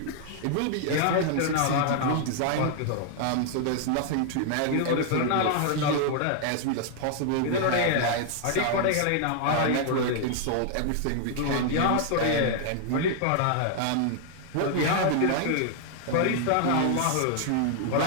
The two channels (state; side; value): different; both; correlation 0.00